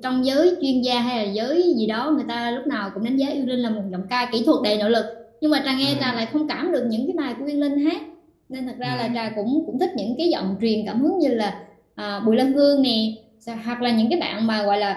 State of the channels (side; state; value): both; identical; correlation 1.00